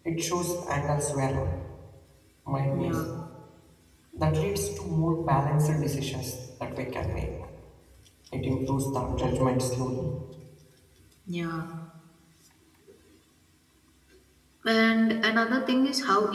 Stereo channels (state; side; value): identical; both; correlation 1.00